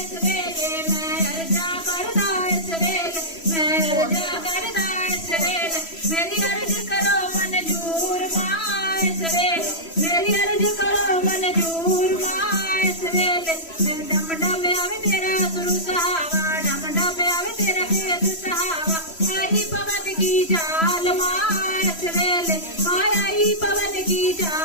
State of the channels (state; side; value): late; right; 3.0 ms